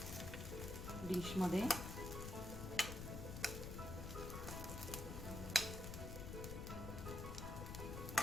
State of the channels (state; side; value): noise; left; rumble, 5 dB below the sound